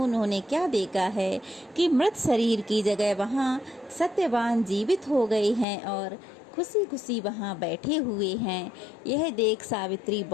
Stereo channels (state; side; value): drops out; right; at 5.7 s